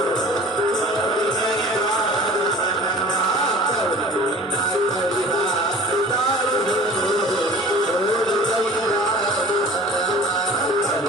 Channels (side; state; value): both; normal; correlation 0.43